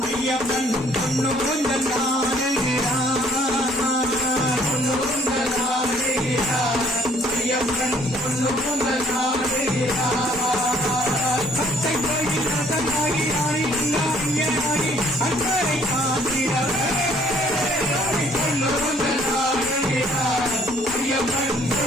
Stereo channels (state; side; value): normal; both; correlation 0.61